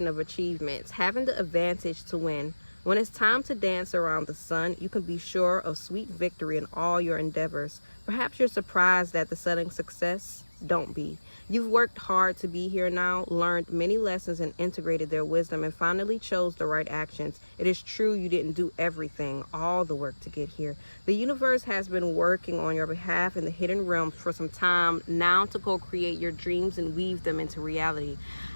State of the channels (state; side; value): inverted; both; correlation -1.00